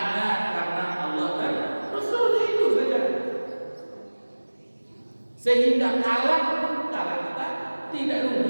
karena Allah dan Rasulnya, itu saja. Sehingga kalah kita tidak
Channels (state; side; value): inverted; both; correlation -1.00